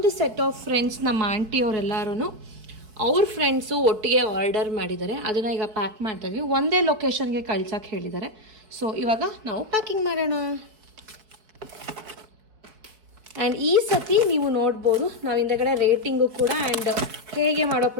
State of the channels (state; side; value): late; left; 4.5 ms